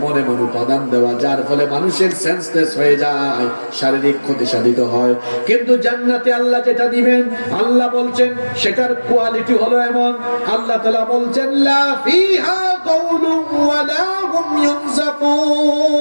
এমন উপাদান দেওয়া যার ফলে মানুষের সেন্সলেস হয়ে যায়, শারীরিক ক্ষতি সাধিত হয়। কিন্তু জান্নাতে আল্লাহ যেটা দিবেন, আল্লাহ বলছেন সেটার কোয়ালিটি হলো এমন। আল্লাহ তাআলা বলছেন লা ফিহা গাউলুন ওয়া লা হুম ইউনজাফুন,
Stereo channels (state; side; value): inverted; both; correlation -1.00